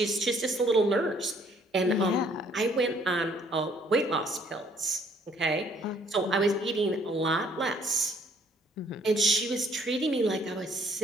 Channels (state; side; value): normal; both; correlation 0.62